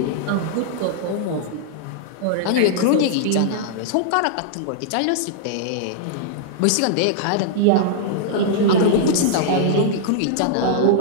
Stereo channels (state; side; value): different; both; correlation -0.02